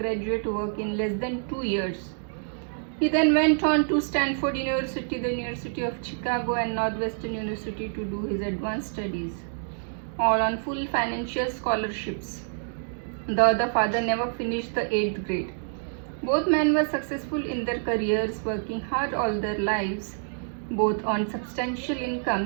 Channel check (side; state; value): left; silent; digital silence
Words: work in less than 2 years. He then went on to Stanford University, the University of Chicago, and Northwestern University to do his advanced studies, all on full financial scholarships. The other father never finished the 8th grade. Both men were successful in their careers, working hard all their lives. Both earned substantial